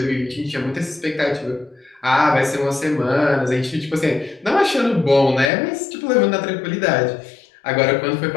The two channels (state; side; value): drops out; right; at 5.5 s